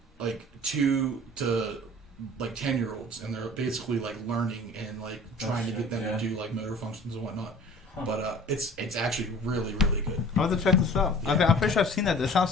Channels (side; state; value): both; normal; correlation 0.45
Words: 2 to 10-year-olds, and they're basically learning and trying to get them to do motor functions and whatnot. But it's actually really, really good. I'll have to check this out. Yeah. I'm pretty sure I've seen that. That sounds